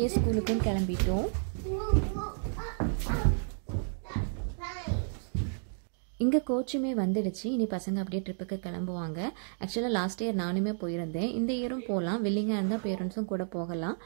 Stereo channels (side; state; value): left; silent; digital silence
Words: ஸ்கூலுக்கும் கிளம்பிட்டோம். இங்கே கோச்சுமே வந்துடுச்சு. இனி பசங்க அப்படியே ட்ரிப்புக்கு கிளம்புவாங்க. ஆக்சுவலாக லாஸ்ட் இயர் நானுமே போயிருந்தேன். இந்த இயரும் போகலாம். வில்லிங்காக இருந்தால் பேரண்ட்ஸும் கூட போகலாம்.